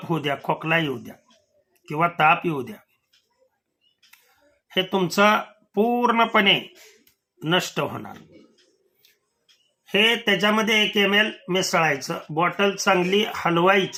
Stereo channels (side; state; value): both; identical; correlation 1.00